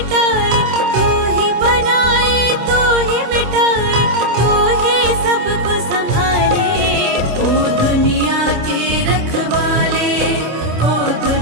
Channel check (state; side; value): late; left; 26 ms